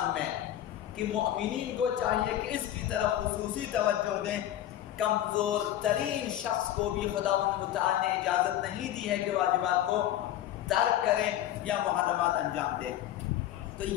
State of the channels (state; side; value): quieter; right; 12.3 dB